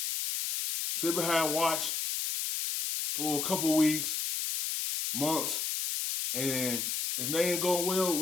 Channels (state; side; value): noise; left; hiss, 1 dB below the sound